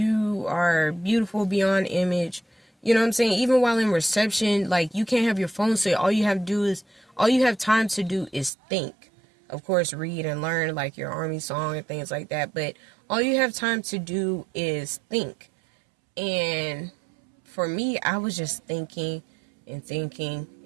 are beautiful beyond image. You know what I'm saying? Even while in reception, like, you can't have your phone, so all you have time to do is think. Of course, read and learn, like, your army song and things like that, but all you have time to do is think. And for me, I was just thinking and thinking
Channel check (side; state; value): left; drops out; at 8.5 s